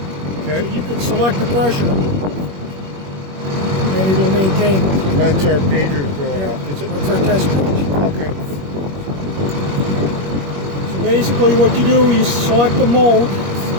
Okay. So you can select the pressure and it'll maintain it. That's our pagers going off, is it? That's our test page. Okay. So basically what you do, you select the mode.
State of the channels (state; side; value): late; left; 21 ms